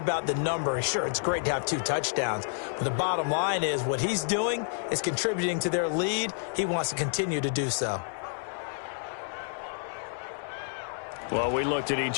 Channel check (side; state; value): right; silent; digital silence